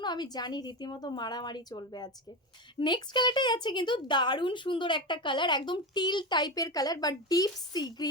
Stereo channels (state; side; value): normal; both; correlation 0.19